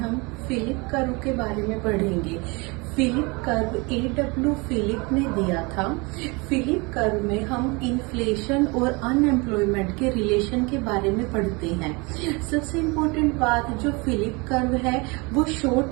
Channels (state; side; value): quieter; left; 27.7 dB